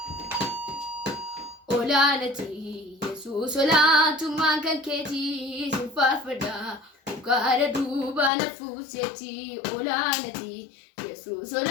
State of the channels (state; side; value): drops out; right; at 8.3 s